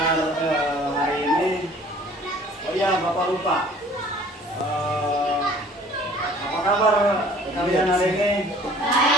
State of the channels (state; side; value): normal; both; correlation 0.52